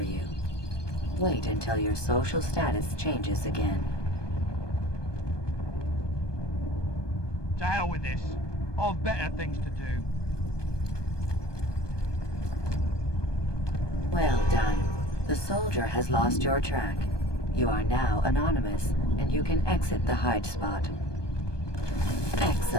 you. Wait until your social status changes again. To hell with this. I've better things to do. Well done. The soldier has lost your track. You are now anonymous, and you can exit the hide spot.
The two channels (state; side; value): late; right; 1.2 ms